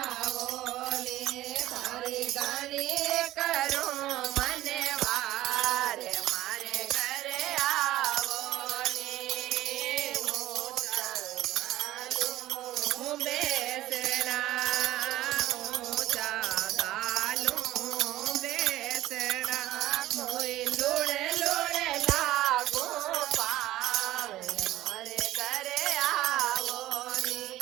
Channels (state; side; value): quieter; left; 15.2 dB